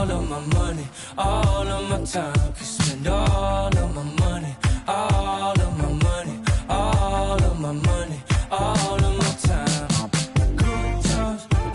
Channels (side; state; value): both; identical; correlation 1.00